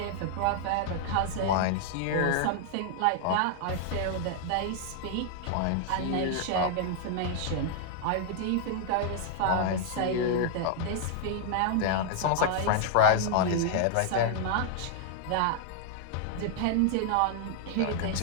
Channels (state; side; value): different; both; correlation -0.01